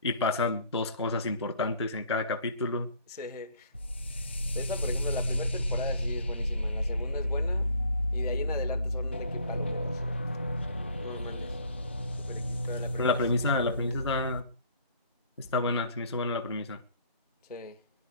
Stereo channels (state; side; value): inverted; both; correlation -0.58